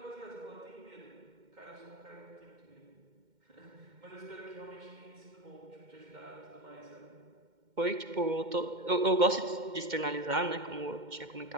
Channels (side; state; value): left; late; 2.1 ms